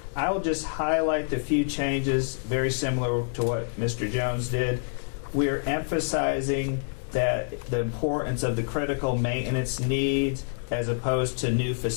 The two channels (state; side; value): silent; right; digital silence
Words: I will just highlight the few changes, very similar to what Mr. Jones did. We're emphasizing that the importance of the critical maintenance needs as opposed to new